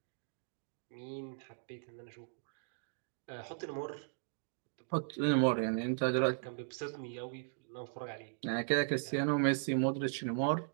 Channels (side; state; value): left; silent; digital silence